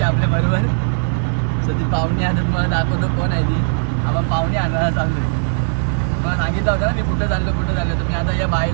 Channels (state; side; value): silent; left; digital silence